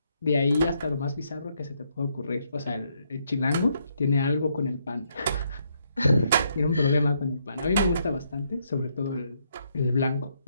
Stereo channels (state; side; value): inverted; both; correlation -0.74